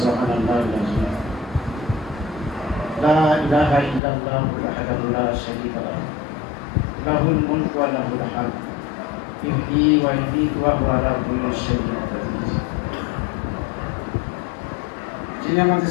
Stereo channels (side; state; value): right; drops out; at 4.0 s